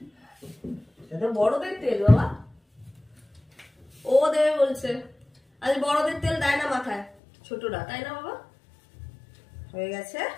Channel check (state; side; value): drops out; right; at 7.1 s